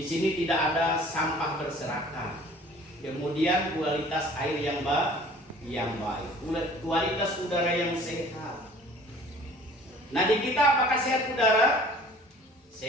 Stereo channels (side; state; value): both; normal; correlation 0.50